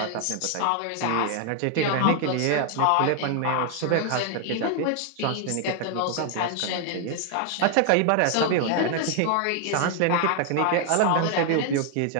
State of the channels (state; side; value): different; both; correlation 0.00